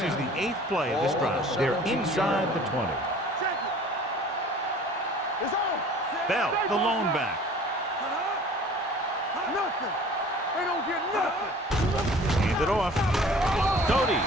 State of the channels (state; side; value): normal; both; correlation 0.47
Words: is the 8th play of this drive. They're inside the 20. It's on. Bell, the lone back. Nothing. They don't get nothing. Hand it off. Doty